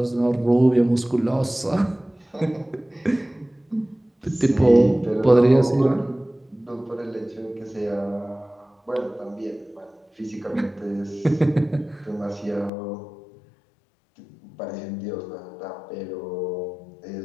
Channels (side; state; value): right; drops out; at 12.7 s